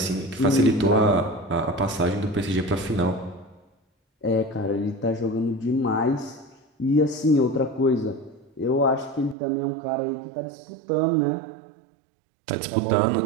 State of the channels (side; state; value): left; drops out; at 9.3 s